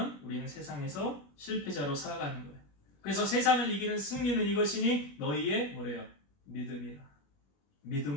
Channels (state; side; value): late; right; 21 ms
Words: 우리는 세상에서 실패자로 살아가는 거예요. 그래서 세상을 이기는 승리는 이것이니 너희의 뭐래요? 믿음이라.